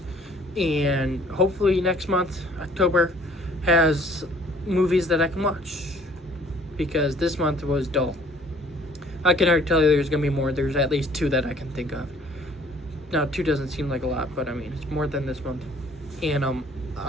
And hopefully next month, October, has movies that I can watch, because this month was dull. I can already tell you there's going to be more. There's at least 2 that I can think of. Now, 2 doesn't seem like a lot, but I mean, it's more than this month. And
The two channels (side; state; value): both; normal; correlation 0.56